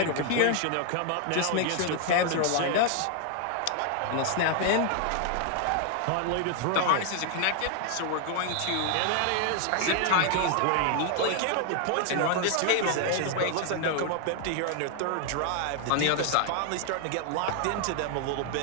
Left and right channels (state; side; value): different; both; correlation 0.00